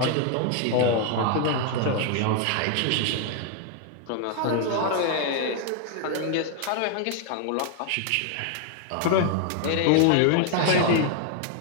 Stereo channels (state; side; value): different; both; correlation 0.00